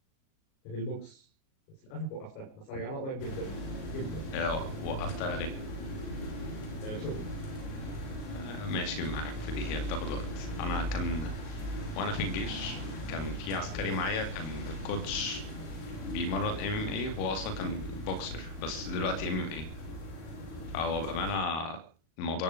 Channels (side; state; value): right; late; 38 ms